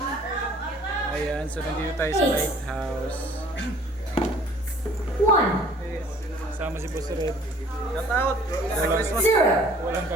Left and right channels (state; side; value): normal; both; correlation 0.53